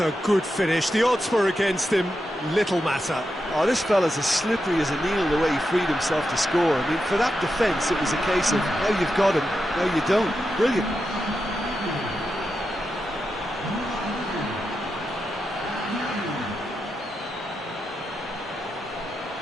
good finish. The odds were against him. Little matter. Oh, this fella's as slippery as a needle the way he freed himself to score. I mean, for that defence, it was a case of now you've got him, now you don't. Brilliant.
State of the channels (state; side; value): normal; both; correlation 0.88